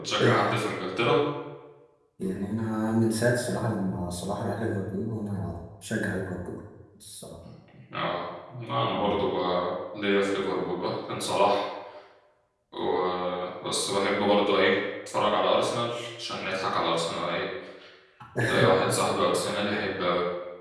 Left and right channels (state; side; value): identical; both; correlation 1.00